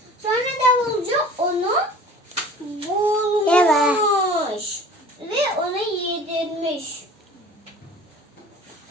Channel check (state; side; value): normal; both; correlation 0.44